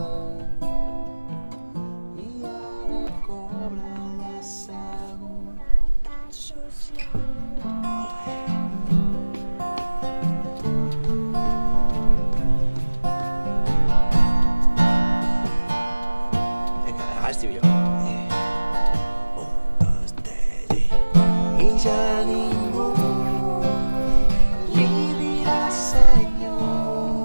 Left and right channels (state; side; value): inverted; both; correlation -1.00